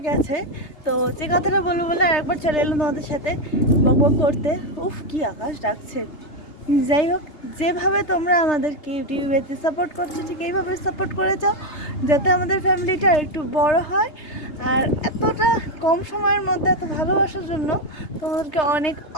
গেছে, তো যে কথাটা বলবো বলে আর একবার চলে এলাম তোমাদের সাথে বক বক করতে। উফ কি আকাশ ডাকছে। যাই হোক, যেভাবে তোমরা আমাদেরকে ইউটিউবেতে সাপোর্ট করছো ঠিক এইভাবে সাপোর্ট করে যাও, যাতে আমাদের ফ্যামিলিটা একটু বড় হয়। আর এতটা কম সময়ের মধ্যে এত ভালোবাসার জন্য তোমাদেরকে অনেক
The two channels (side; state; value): right; late; 3.3 ms